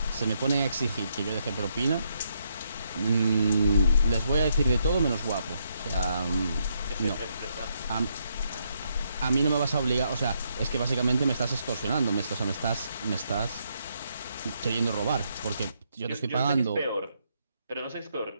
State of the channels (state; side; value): inverted; both; correlation -0.76